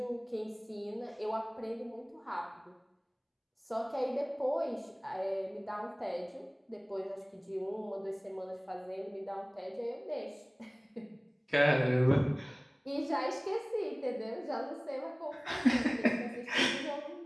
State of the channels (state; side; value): identical; both; correlation 1.00